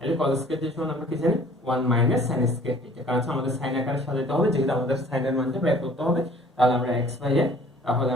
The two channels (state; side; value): normal; both; correlation 0.53